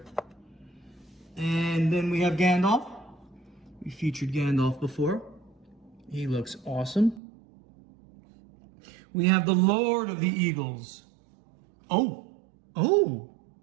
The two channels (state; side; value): drops out; left; at 7.2 s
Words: And then we have Gandalf. We featured Gandalf before. He looks awesome. We have the Lord of the Eagles. Oh,